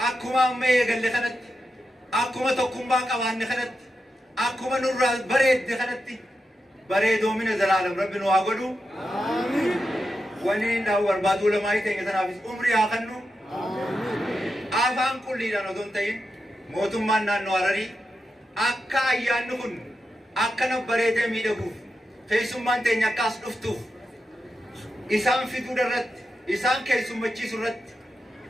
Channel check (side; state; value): both; normal; correlation 0.88